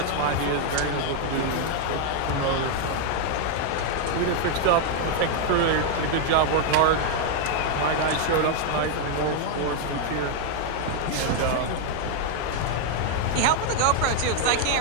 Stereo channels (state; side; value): different; both; correlation 0.00